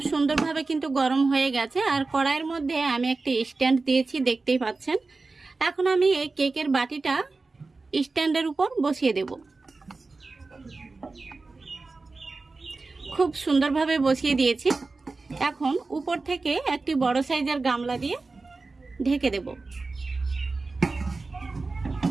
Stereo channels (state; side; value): quieter; left; 3.7 dB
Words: সুন্দরভাবে কিন্তু গরম হয়ে গেছে আর কড়াইয়ের মধ্যে আমি একটি স্ট্যান্ড দিয়েছি, দেখতেই পাচ্ছেন। এখন আমি এই কেকের বাটিটা স্ট্যান্ডের উপর বসিয়ে দেব। খুব সুন্দরভাবে বসিয়ে দিয়েছি। এখন উপর থেকে একটি বড় সাইজের গামলা দিয়ে ঢেকে দেব।